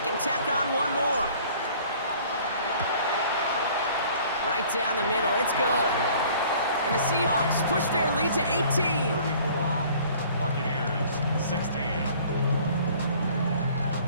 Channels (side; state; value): both; inverted; correlation -0.52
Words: tack on one more. Right down the middle, it's good. And the Seahawks push their lead to 18. Buccaneers 16.